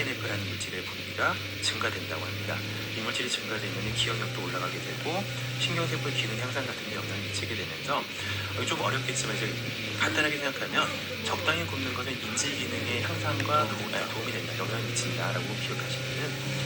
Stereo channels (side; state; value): both; identical; correlation 1.00